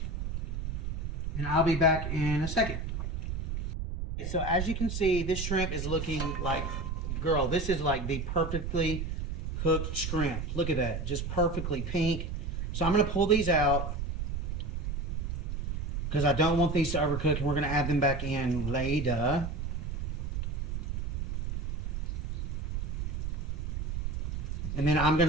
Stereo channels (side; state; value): right; noise; rumble, 3 dB below the sound